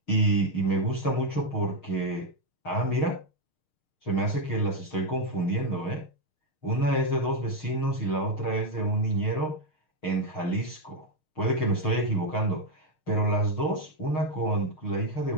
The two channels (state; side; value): late; right; 6.5 ms